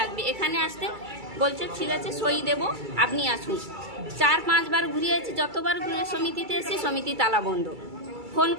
এখানে আসতে বলছে ঠিক আছে সই দেব, আপনি আসুন। 4-5 বার ঘুরিয়েছি, যতবার ঘুরে সমিতিতে এসেছি সমিতি তালা বন্ধ, ফোন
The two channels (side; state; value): left; late; 2.3 ms